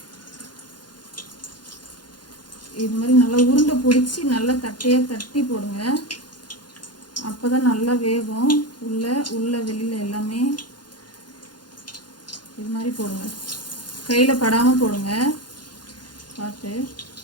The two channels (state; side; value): late; right; 0.71 ms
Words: இது மாதிரி நல்லா உருண்டை பிடிச்சி நல்லா தட்டையாக தட்டி போடுங்க. அப்போ தான் நல்லா வேகும். உள்ள வெளியில் எல்லாமே இது மாதிரி போடுங்க. கையில் படாமல் போடுங்க பார்த்து.